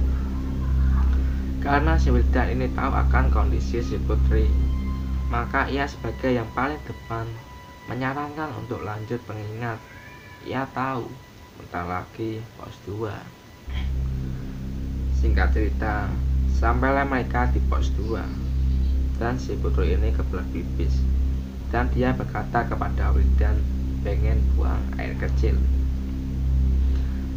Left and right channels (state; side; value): identical; both; correlation 1.00